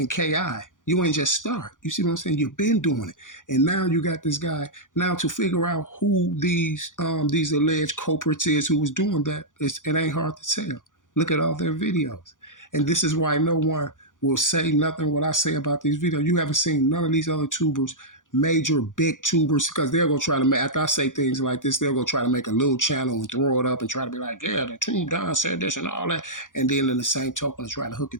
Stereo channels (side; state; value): right; late; 0.88 ms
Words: Ki. You ain't just start. You see what I'm saying? You've been doing it. And now you got this guy. Now to figure out who these alleged culprits is who was doing that, it ain't hard to tell. Look at all their videos. And this is why no one will say nothing what I say about these videos. You haven't seen none of these other tubers, major big tubers, because they're gonna try to make, after I say things like this, they're gonna try to make a little channel and throw it up and try to be like, yeah, the tube Don said this and all that, and then in the same token try to hook